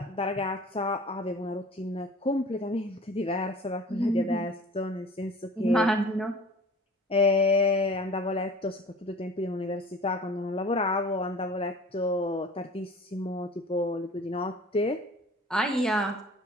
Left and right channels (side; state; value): both; normal; correlation 0.43